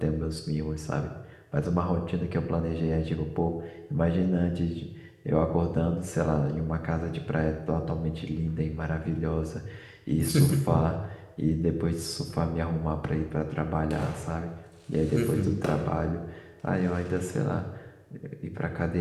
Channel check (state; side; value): identical; both; correlation 1.00